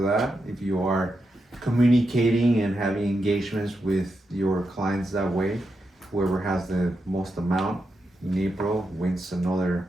that. If you are communicating and having engagements with your clients that way, whoever has the most amount in April wins another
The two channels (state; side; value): normal; both; correlation 0.86